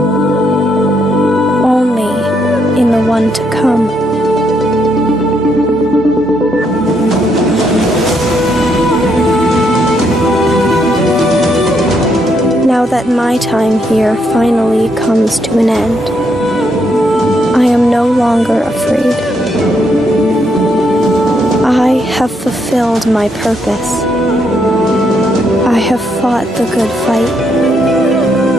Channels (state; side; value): normal; both; correlation 0.75